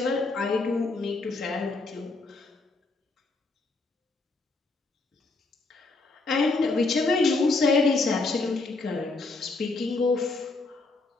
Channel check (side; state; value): right; quieter; 3.5 dB